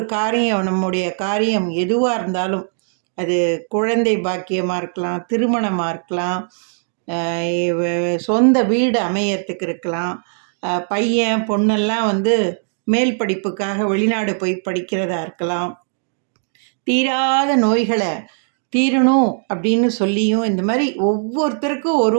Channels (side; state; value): left; silent; digital silence